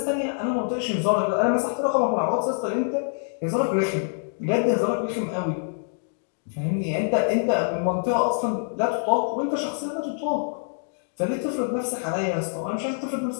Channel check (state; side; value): silent; right; digital silence